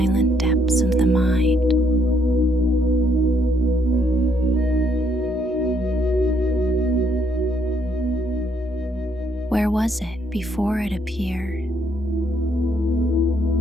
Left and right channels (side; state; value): both; normal; correlation 0.70